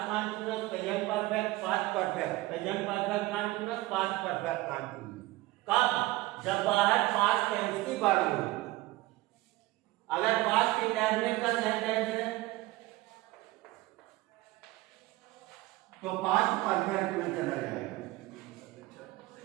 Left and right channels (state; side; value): quieter; left; 18.9 dB